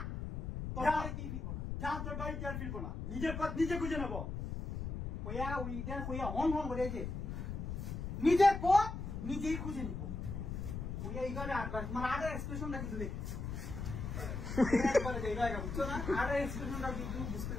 যা, তোর বাড়িতে আর ফিরবো না। নিজের পথ নিজে খুঁজে নেবো। নিজের পথ নিজেই খুঁজে নিব। এইখানে মানে আগে এক্সপ্রেশনটা কিন্তু দেখ, বুঝছো না? আগে এক্সপ্রেশনটা কিন্তু বুঝতে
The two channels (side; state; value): left; noise; rumble, 5 dB below the sound